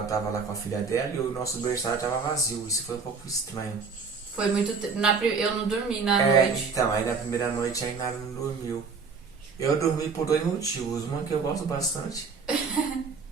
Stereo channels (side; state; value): left; quieter; 5.0 dB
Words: tava lá com a filha dela e o nosso berçário tava vazio. Isso foi um pouco estranho. Foi muito... Eu não dormi na noite. Então, aí na primeira noite a Inara não dormiu. Eu dormi por 2 motivos. Uma que eu gosto bastante.